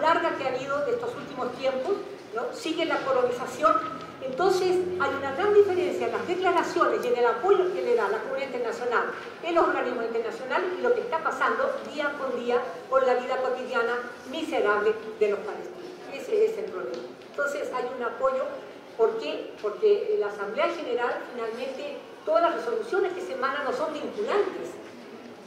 que ha habido de estos últimos tiempos, ¿no? Sigue la colonización. Entonces hay una gran diferencia en las declaraciones y en el apoyo que le da la comunidad internacional, en los organismos internacionales, y lo que está pasando día con día con la vida cotidiana miserable de los palestinos. Ese es el problema. Entonces hay un apoyo. ¿Por qué? Porque la Asamblea General, finalmente, todas las resoluciones que se emanan no son vinculantes.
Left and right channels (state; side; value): identical; both; correlation 1.00